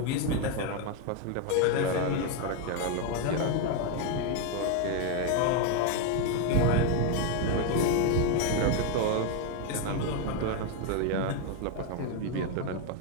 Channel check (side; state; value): both; different; correlation 0.01